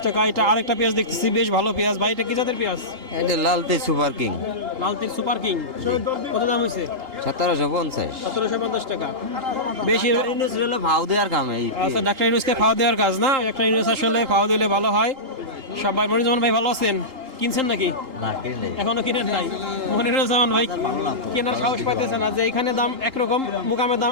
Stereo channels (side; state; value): left; late; 2.8 ms